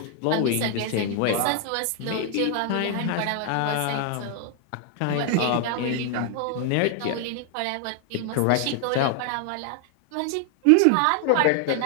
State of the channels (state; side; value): different; both; correlation 0.00